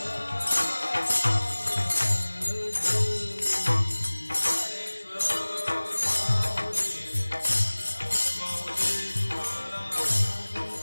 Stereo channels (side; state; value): both; inverted; correlation -1.00